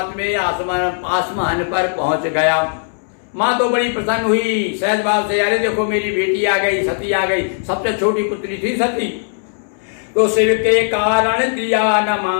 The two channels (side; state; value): right; silent; 68 dB below the other